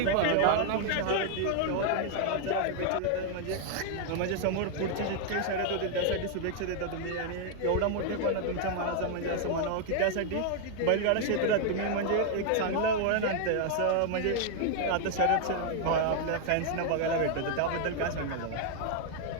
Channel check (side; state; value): both; different; correlation 0.00